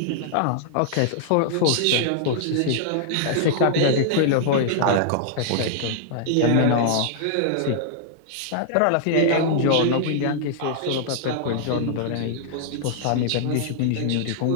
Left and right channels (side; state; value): both; different; correlation -0.01